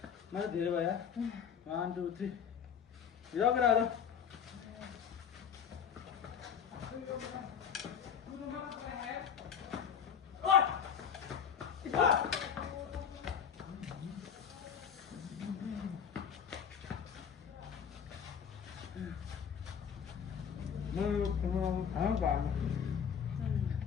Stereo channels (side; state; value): right; quieter; 7.6 dB